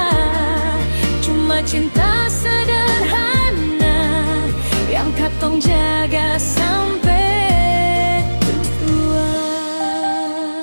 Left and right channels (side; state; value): both; inverted; correlation -1.00